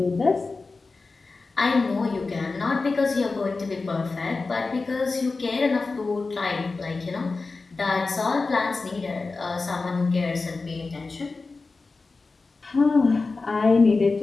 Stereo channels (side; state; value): right; quieter; 3.9 dB